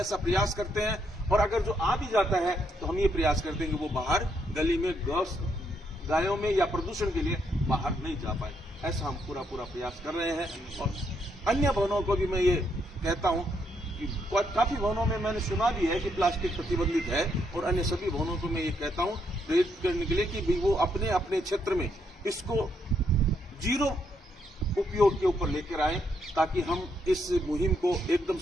प्रयास करते हैं। और अगर जो आ भी जाता है तो हम ये प्रयास करते हैं कि वो बाहर गली में गायों में या प्रदूषण के लिए बाहर नहीं जा पाए। ऐसा हम पूरा प्रयास कर रहे हैं। और अन्य भवनों को भी मैं ये कहता हूं कि काफी भवनों में मैंने सुना भी है कि प्लास्टिक प्रतिबंधित है, और अन्य सभी भवनों को मैं ये कहता हूं प्रेरित करने के लिए कि भी वो अपने अपने क्षेत्र में इसको जीरो उपयोग के ऊपर लेकर आए, ताकि हम इस मुहिम को एकदम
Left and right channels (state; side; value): normal; both; correlation 0.75